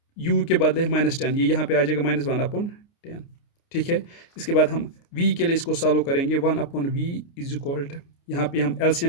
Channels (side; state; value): right; late; 29 ms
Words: u के बदले -10, ये यहाँ पे आ जाएगा -1/10। ठीक है, इसके बाद हम v के लिए इसको सॉल्व करेंगे। 1/v इज इक्वल टू, यहाँ पे हम